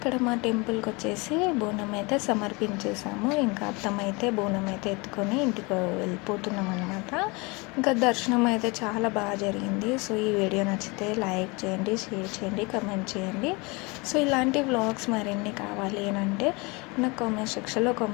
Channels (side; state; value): right; quieter; 27.1 dB